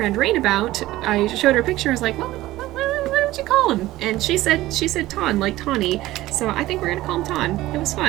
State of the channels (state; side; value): quieter; left; 16.7 dB